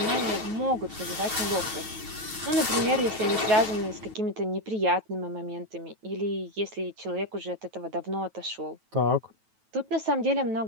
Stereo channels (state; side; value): late; left; 9.1 ms